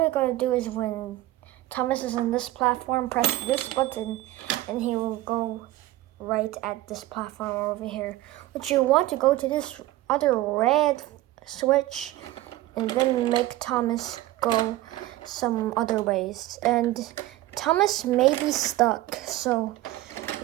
you gotta do is when Thomas is on this platform, press this button and he will go right at this platform over here. But you want to go to this other red switch and then make Thomas go some other ways. And Thomas may be stuck, so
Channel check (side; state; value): left; quieter; 16.4 dB